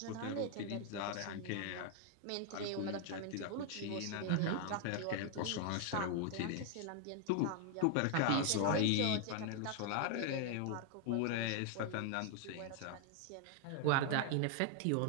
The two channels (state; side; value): different; both; correlation 0.00